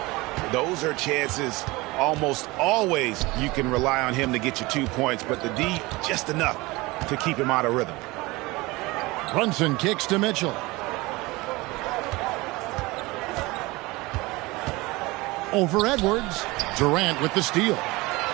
Those are chances almost always you can rely on him to get you 2 points, but the D just enough to keep him out of rhythm. Brunson kicks to Mitchell. Over Edwards. Durant with the steal.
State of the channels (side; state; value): left; quieter; 22.2 dB